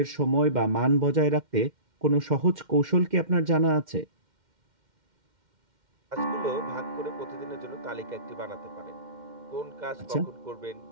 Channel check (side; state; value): left; late; 2.1 ms